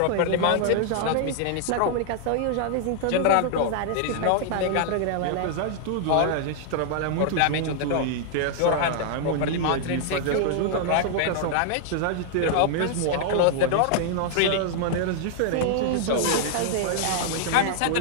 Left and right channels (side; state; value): both; different; correlation -0.01